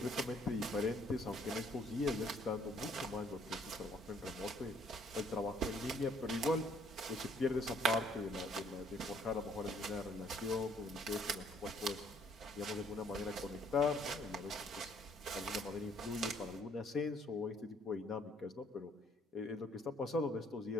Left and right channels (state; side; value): normal; both; correlation 0.64